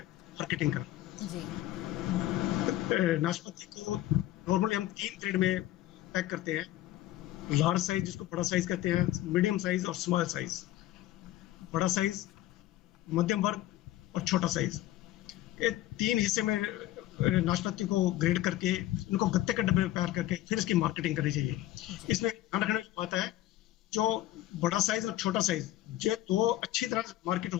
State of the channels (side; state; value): right; quieter; 14.8 dB